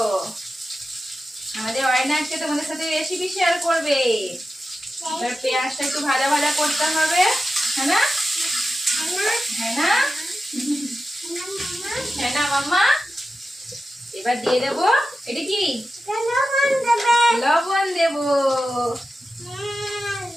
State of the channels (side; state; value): both; normal; correlation 0.92